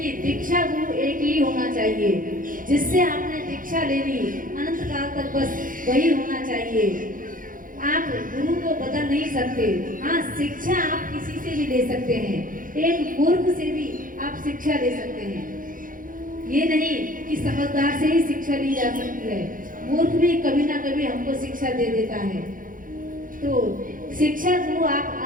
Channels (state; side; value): late; left; 0.40 ms